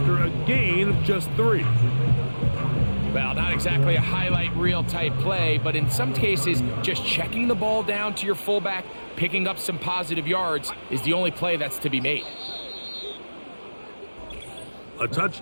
a gain of just 3. Well, not exactly a highlight reel type play, but in some cases, just checking the ball down to your fullback, picking up some positive yards is the only play that's to be made. A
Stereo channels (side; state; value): both; inverted; correlation -1.00